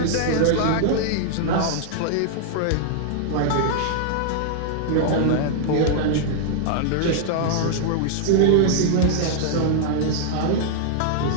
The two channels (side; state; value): both; different; correlation -0.01